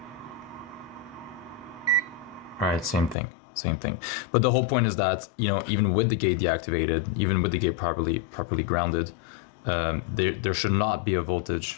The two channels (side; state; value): right; drops out; at 3.2 s